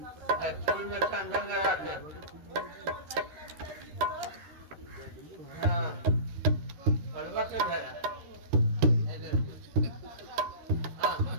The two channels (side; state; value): left; late; 13 ms